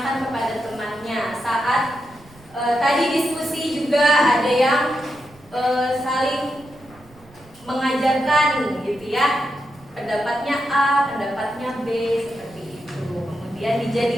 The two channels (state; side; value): noise; right; rumble, 25 dB below the sound